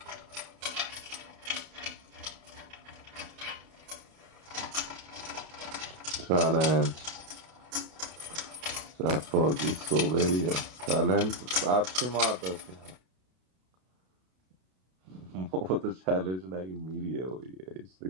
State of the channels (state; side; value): late; left; 32 ms